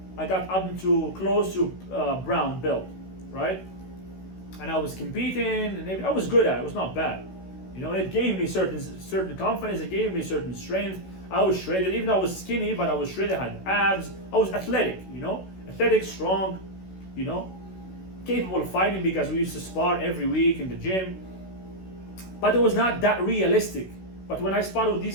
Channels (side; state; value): right; late; 16 ms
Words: up to close to brown belt, right? And I was competing, and I was good at it. It was not bad. You know, it gave me certain confidence. It gave me certain strength. I was shredded, even though I was skinny, but I was shredded, I had abs. I was athletic, you know, athletic, strong, you know, capable of fighting because we used to spar every week in the gym. But it was not that realistic. But when I sparred with